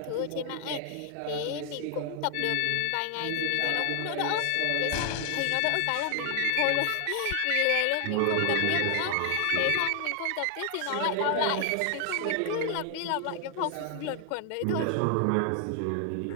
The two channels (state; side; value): different; both; correlation 0.00